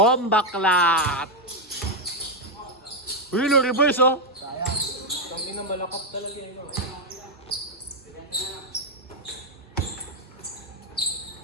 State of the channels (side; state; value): both; normal; correlation 0.03